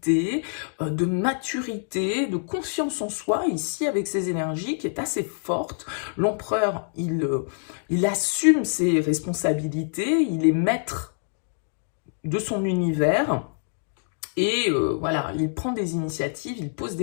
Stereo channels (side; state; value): right; silent; digital silence